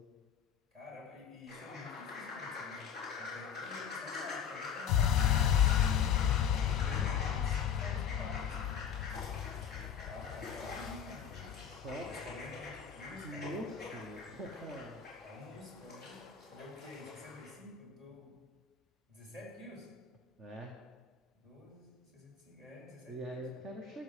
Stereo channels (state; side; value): quieter; right; 7.9 dB